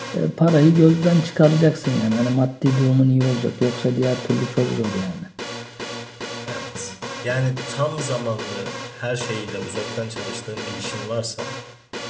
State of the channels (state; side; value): identical; both; correlation 1.00